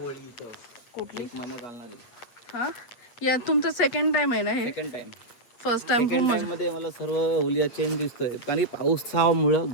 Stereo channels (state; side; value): late; right; 8.6 ms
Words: इथं. कुठली महिना चालणारी. हा या तुमचा सेकंड टाइम आहे ना हे. Second time. फर्स्ट टाइम मध्ये मला सर्व होलिया चेंज दिसतोय कारण की